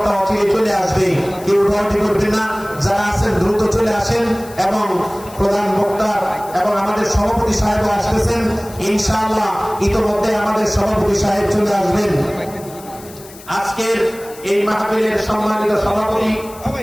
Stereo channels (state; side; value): noise; left; hiss, 19 dB below the sound